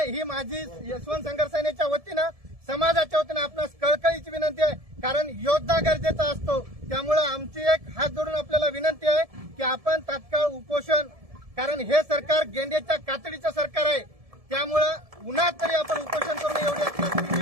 ही माझी यशवंत संघर्ष सेनेच्या वतीनं समाजाच्या वतीनं आपणास कळकळीची विनंती आहे, कारण योद्धा गरजेचा असतो। त्यामुळे आमची एक हात जोडून आपल्याला विनंती आहे की आपण तात्काळ उपोषण, कारण हे सरकार गेंड्याच्या कातडीचं सरकार आहे, त्यामुळं उन्हात तरी आपण उपोषण करू नये एवढी आपल्याला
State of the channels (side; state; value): left; late; 1.7 ms